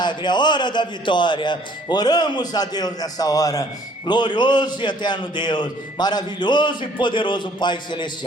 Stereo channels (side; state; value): both; normal; correlation 0.59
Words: é a hora da vitória. Oramos a Deus nessa hora. Glorioso e eterno Deus, maravilhoso e poderoso Pai